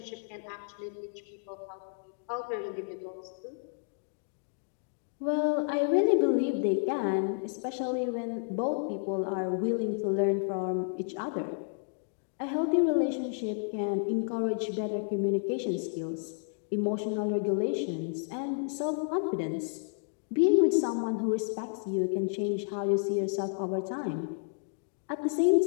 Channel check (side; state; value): right; silent; digital silence